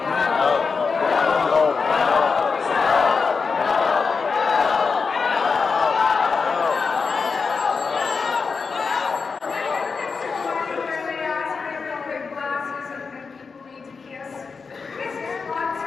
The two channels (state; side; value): quieter; right; 5.0 dB